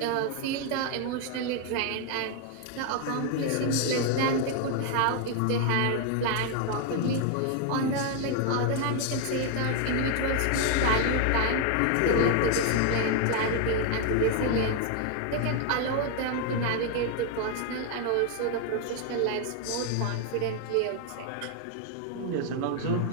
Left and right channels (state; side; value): different; both; correlation 0.01